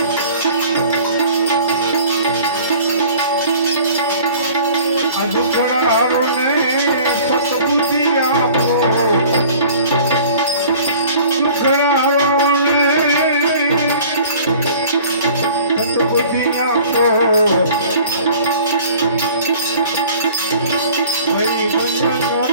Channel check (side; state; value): both; inverted; correlation -0.48